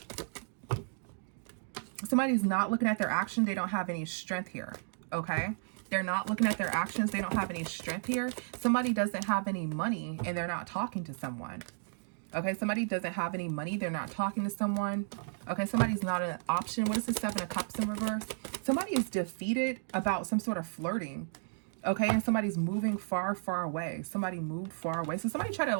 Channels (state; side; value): silent; left; digital silence